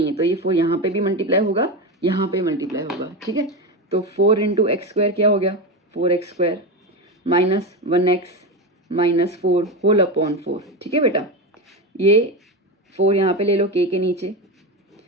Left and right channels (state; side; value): normal; both; correlation 0.17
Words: है, तो ये 4 यहाँ पे भी मल्टीप्लाई होगा, यहाँ पे मल्टीप्लाई होगा। ठीक है, तो 4 इंटू एक्स स्क्वायर क्या हो गया 4x square minus 1x minus 4 whole upon 4। ठीक है बेटा, ये 4 यहाँ पे ले लो के नीचे,